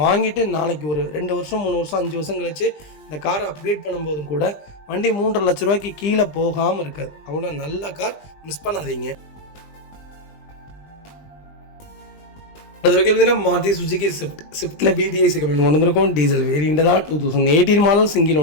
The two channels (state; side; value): late; right; 20 ms